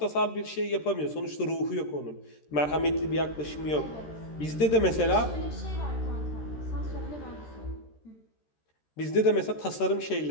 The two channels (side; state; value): right; late; 13 ms